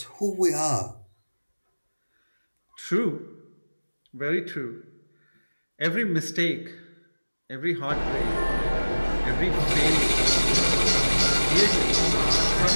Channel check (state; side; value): inverted; both; correlation -1.00